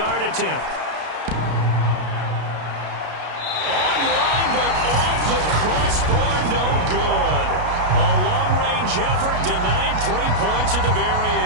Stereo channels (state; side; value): late; left; 33 ms